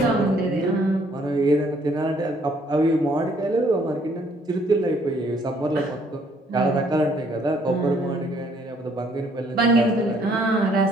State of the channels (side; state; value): both; normal; correlation 0.64